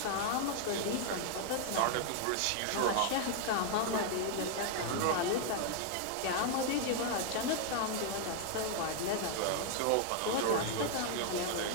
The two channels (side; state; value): both; different; correlation 0.00